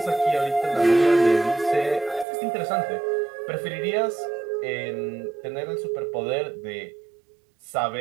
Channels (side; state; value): left; drops out; at 2.2 s